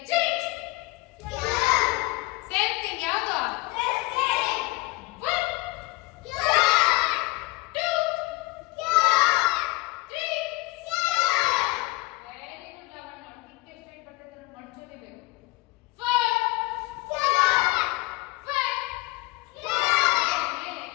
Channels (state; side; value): quieter; right; 21.7 dB